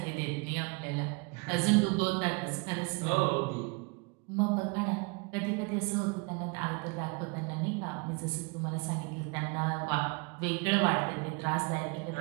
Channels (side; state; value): left; quieter; 30.2 dB